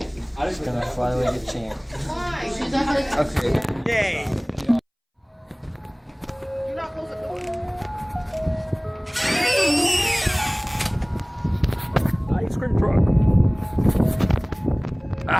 I'm just gonna fly like a champ. Why? Okay. Yay! You're not close the door. Ice cream truck.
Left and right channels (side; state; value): both; identical; correlation 1.00